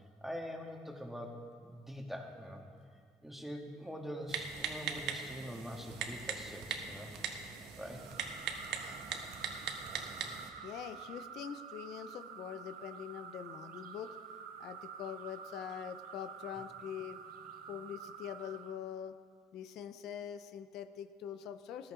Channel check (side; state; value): both; normal; correlation 0.43